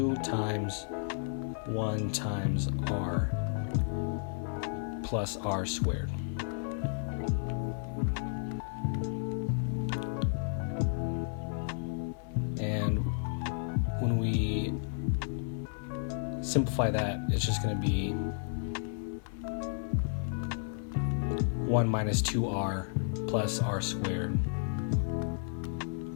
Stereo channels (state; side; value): silent; right; digital silence